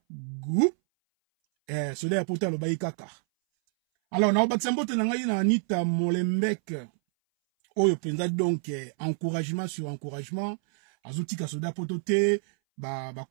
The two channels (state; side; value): silent; left; 59 dB below the other